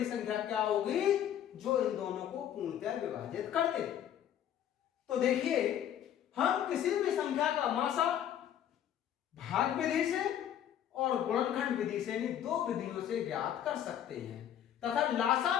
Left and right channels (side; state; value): right; quieter; 10.3 dB